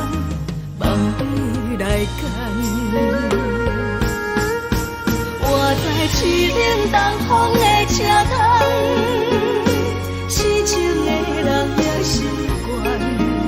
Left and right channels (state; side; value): identical; both; correlation 1.00